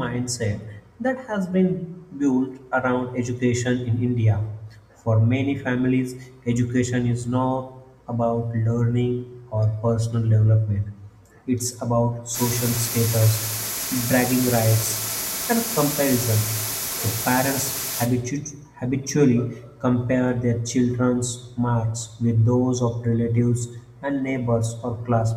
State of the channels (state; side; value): identical; both; correlation 1.00